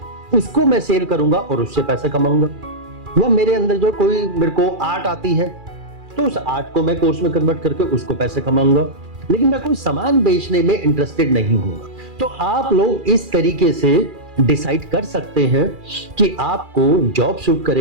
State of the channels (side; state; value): left; late; 2.4 ms